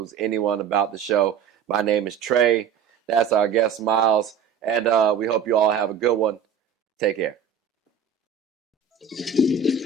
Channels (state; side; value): quieter; left; 7.0 dB